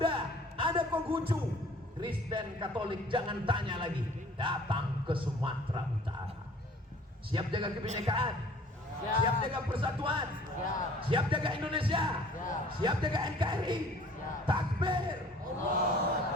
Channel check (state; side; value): normal; both; correlation 0.51